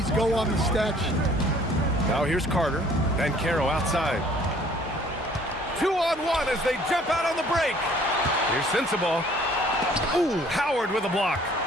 go on the stat sheet. Now here's Carter, Banchero outside. 2-on-1 as they jump out on the break. Here's Sensabaugh. Ooh, Howard with a block.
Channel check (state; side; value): normal; both; correlation 0.56